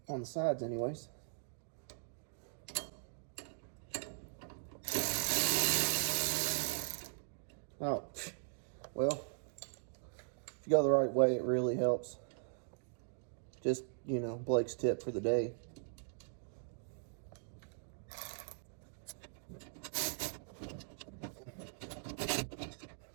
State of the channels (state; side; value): silent; left; digital silence